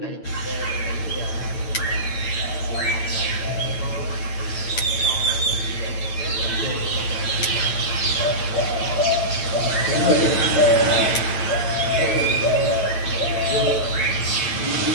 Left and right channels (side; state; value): right; late; 9.1 ms